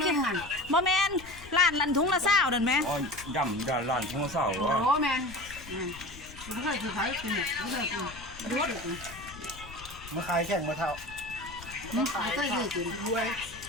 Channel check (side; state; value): left; noise; rumble, 17 dB below the sound